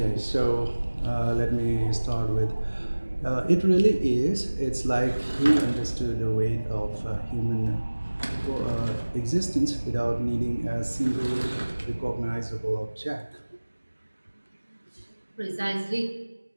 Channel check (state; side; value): inverted; both; correlation -1.00